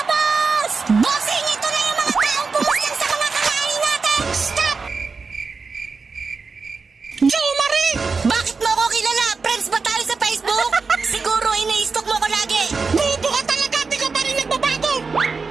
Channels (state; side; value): quieter; left; 4.6 dB